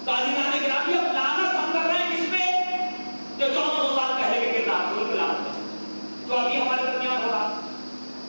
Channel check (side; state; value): both; inverted; correlation -1.00